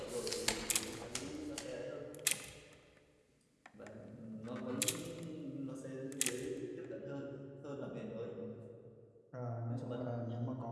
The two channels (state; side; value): identical; both; correlation 1.00